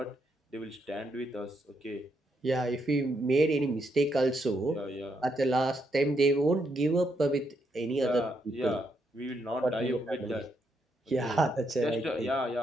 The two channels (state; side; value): normal; both; correlation 0.78